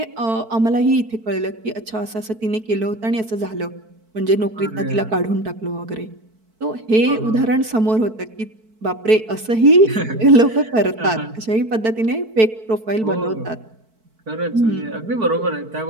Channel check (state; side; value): late; left; 4.5 ms